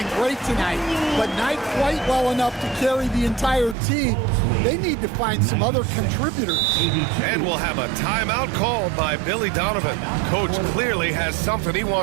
great tonight, but not quite well enough to carry the entire team. They need to find some other contributors. And we'll have a timeout called by Billy Donovan. Coach clearly has something he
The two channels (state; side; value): drops out; left; at 3.8 s